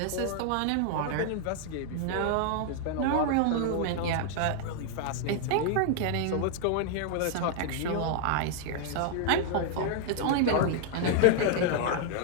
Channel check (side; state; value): both; different; correlation -0.01